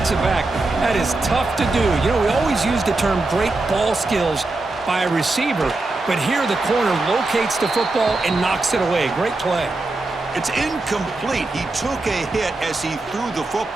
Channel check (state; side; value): quieter; left; 3.1 dB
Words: back, that is tough to do. You know, we always use the term great ball skills by a receiver, but here the corner locates the football and knocks it away. Great play. It's incomplete. He took a hit as he threw the